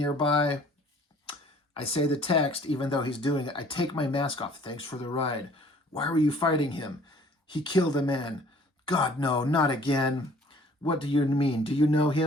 I say the text, even though he's doing it. I take my mask off. Thanks for the ride. Why were you fighting him? He killed a man. God, no, not again. What do you mean? Do you know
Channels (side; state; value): both; normal; correlation 0.54